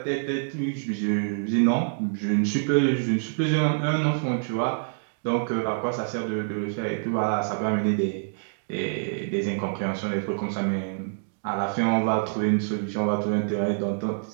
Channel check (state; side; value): silent; left; digital silence